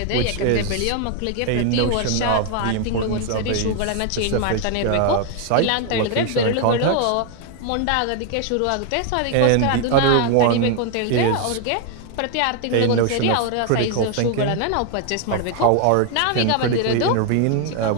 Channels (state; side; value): different; both; correlation 0.00